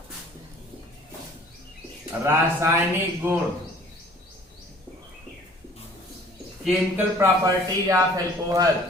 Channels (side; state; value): both; normal; correlation 0.51